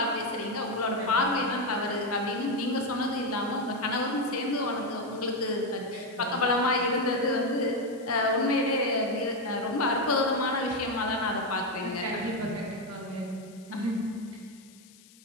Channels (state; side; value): noise; left; hiss, 25 dB below the sound